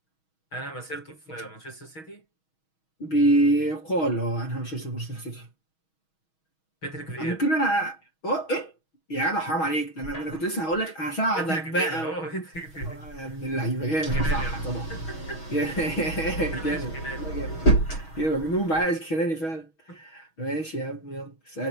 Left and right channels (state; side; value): late; right; 6.3 ms